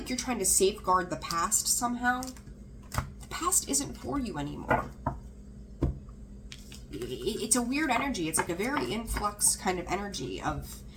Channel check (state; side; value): identical; both; correlation 1.00